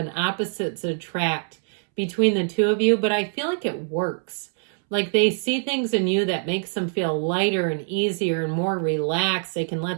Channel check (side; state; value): left; silent; 63 dB below the other